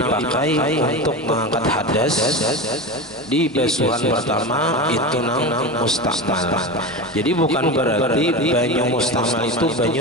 untuk mengangkat hadas di basuhan pertama itu nang mustamal. Jadi bukan berarti banyu mustamal itu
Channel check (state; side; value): normal; both; correlation 0.24